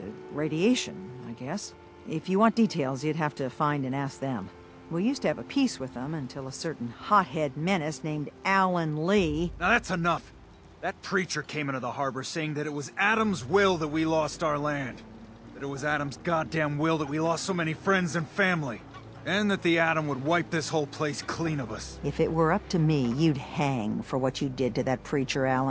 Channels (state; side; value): identical; both; correlation 1.00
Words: radiation, I guess. If you want details, you'd have to find and ask them. We used to have a peace with them until a certain hothead menace named Alan Lee... Now that's enough! That preacher came into the harbor saying that it was Adam's will that we lost our land. That it was Adam's goddamn will that we lost so many friends and family. And that the Atom would wipe this whole place clean of us. If it were up to me, you'd hang for what you did to that preacher,